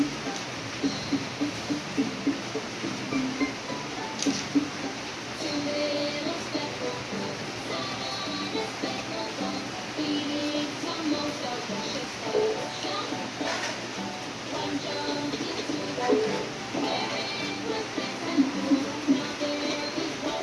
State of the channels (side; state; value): both; identical; correlation 1.00